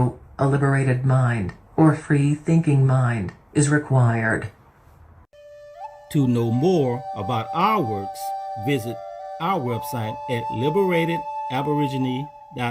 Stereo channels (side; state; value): both; identical; correlation 1.00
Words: a liberated mind or free-thinking mind is required. To know more about our works, visit our website at